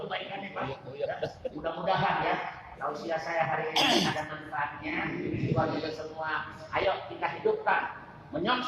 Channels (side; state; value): both; identical; correlation 1.00